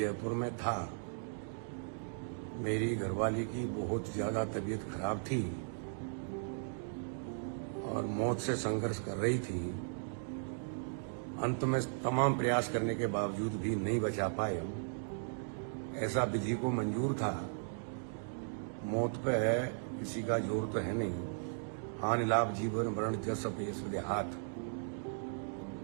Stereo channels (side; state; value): left; silent; digital silence